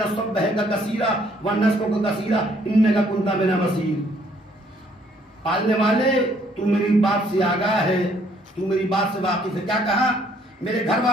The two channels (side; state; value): both; normal; correlation 0.64